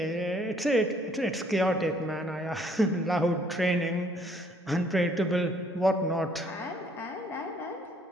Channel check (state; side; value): normal; both; correlation 0.63